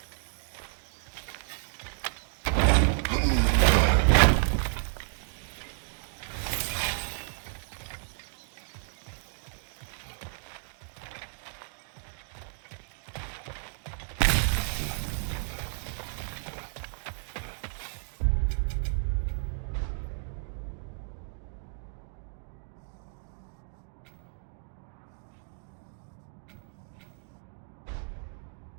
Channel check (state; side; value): silent; left; 57 dB below the other